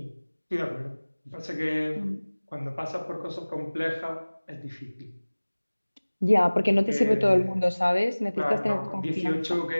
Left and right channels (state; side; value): inverted; both; correlation -1.00